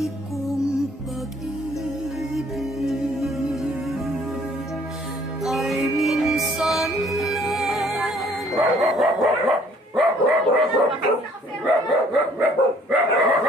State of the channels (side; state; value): both; normal; correlation 0.60